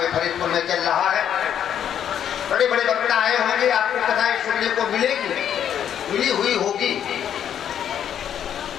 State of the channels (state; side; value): quieter; right; 9.4 dB